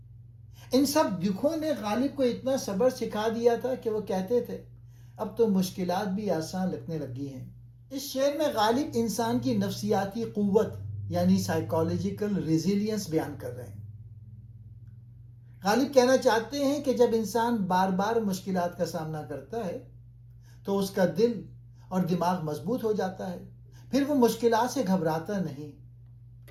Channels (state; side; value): identical; both; correlation 1.00